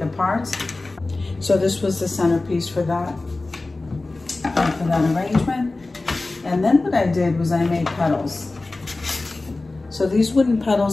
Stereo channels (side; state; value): right; quieter; 3.2 dB